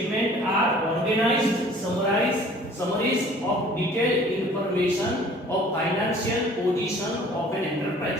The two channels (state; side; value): normal; both; correlation 0.51